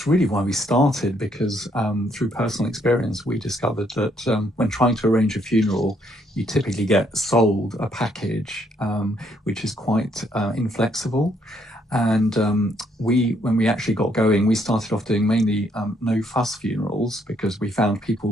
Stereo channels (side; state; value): both; normal; correlation 0.71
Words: really why we started, because through personal experience, we discovered that when trying to arrange a funeral, you typically get sold a package which is quite inflexible. And when we actually got going, we started off doing mainly no-fuss funerals, because we found